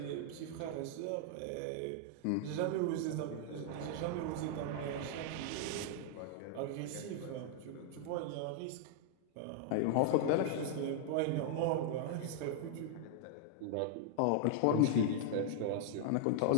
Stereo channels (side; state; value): both; different; correlation -0.01